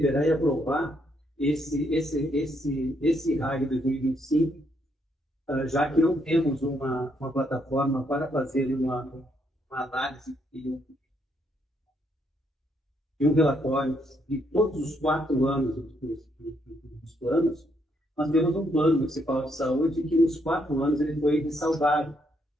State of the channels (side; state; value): both; normal; correlation 0.74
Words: e aprovar esse RAG 2025, já que não temos uma plataforma para fazer uma análise e um relatório de todos os 4 anos dos planos. Nós temos um plano municipal de saúde que nos 4 anos ele foi ressalvado.